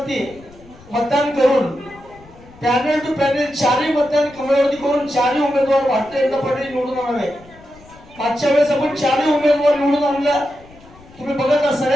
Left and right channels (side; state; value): left; noise; rumble, 23 dB below the sound